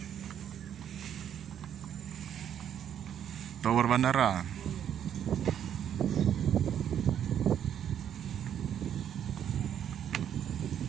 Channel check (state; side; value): quieter; left; 9.5 dB